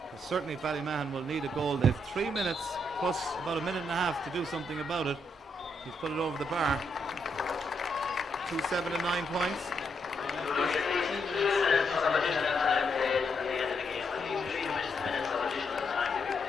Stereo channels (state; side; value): normal; both; correlation 0.78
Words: But certainly Ballymahon will need a goal. They have 3 minutes plus about a minute and a half to do something about it. He's put it over the bar. 7 to 9 points.